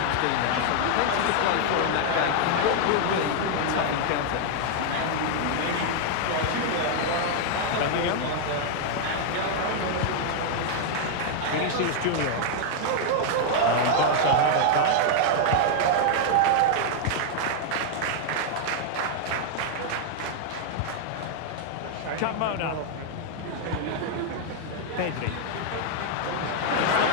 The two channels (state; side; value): different; both; correlation -0.01